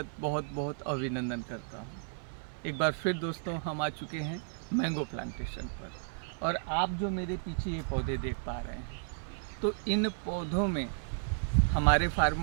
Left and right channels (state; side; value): silent; left; 56 dB below the other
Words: बहुत बहुत अभिनंदन करता हूं। एक बार फिर दोस्तों हम आ चुके हैं मैंगो प्लांटेशन पर। और आप जो मेरे पीछे ये पौधे देख पा रहे हैं, तो इन पौधों में हमारे